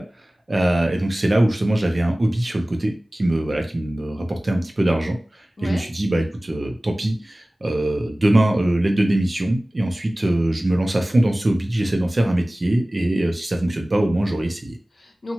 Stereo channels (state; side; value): normal; both; correlation 0.98